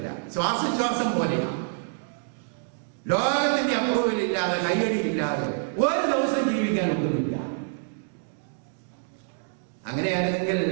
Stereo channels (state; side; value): silent; left; digital silence